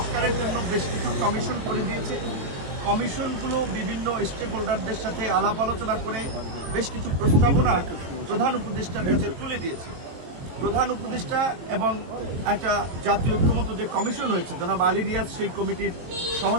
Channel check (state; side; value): late; left; 23 ms